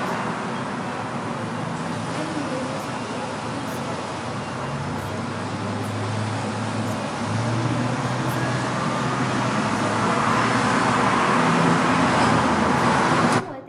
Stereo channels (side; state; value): both; identical; correlation 1.00